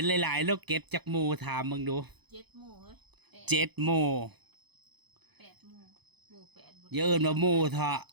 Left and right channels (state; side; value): late; left; 0.99 ms